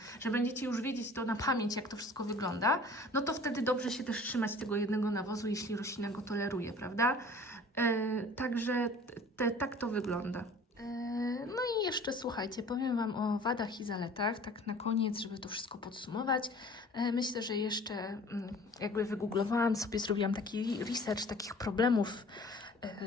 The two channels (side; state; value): both; normal; correlation 0.47